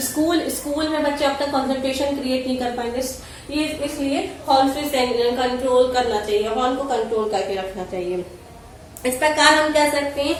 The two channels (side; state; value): both; identical; correlation 1.00